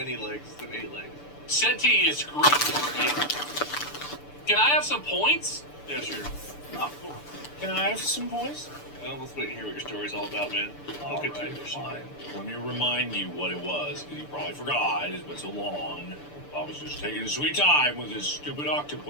legs instead of 8 legs. Senti is Greek for eight. Can I have some points? Yeah, sure. Oh, cool. Can I have some points? Well, let's wait and hear what your story's all about, man. All Look at right, you. fine. Let me remind you what it was, because you probably forgot. It's been so long. I was just taking a sweet time with this stupid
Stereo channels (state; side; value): late; right; 6.8 ms